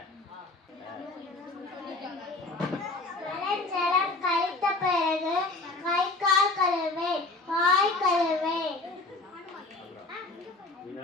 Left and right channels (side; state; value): right; quieter; 3.1 dB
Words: ஜலம் கழித்த பிறகு கை கால் கழுவேன். வாய் கழுவேன்.